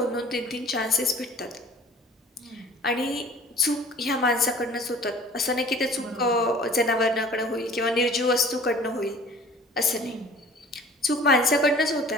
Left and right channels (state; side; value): normal; both; correlation 0.48